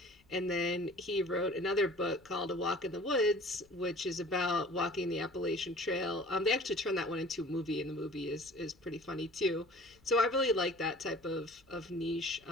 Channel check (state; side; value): noise; left; rumble, 30 dB below the sound